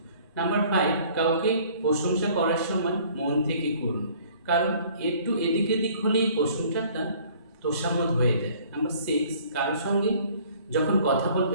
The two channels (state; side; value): inverted; both; correlation -0.54